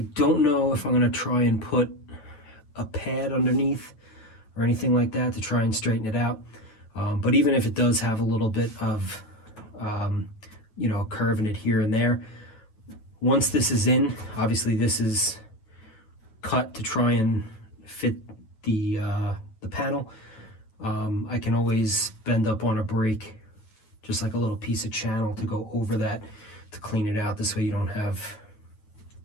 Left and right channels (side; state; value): right; late; 9.1 ms